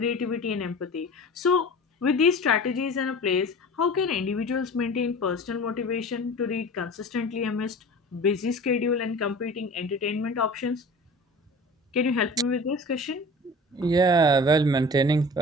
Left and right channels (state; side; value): normal; both; correlation 0.39